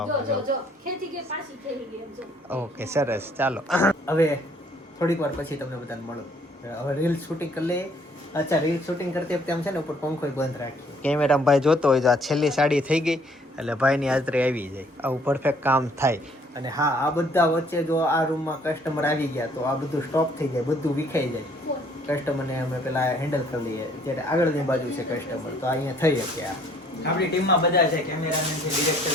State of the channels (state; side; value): normal; both; correlation 0.61